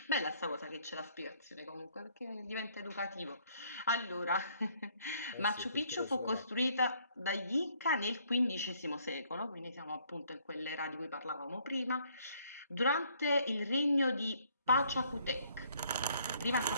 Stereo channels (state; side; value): inverted; both; correlation -0.64